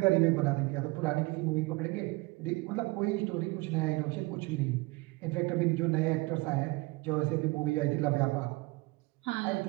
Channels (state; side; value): quieter; left; 24.2 dB